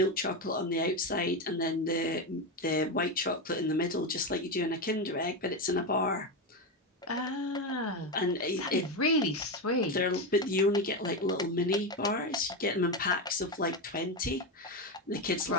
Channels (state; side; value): normal; both; correlation 0.13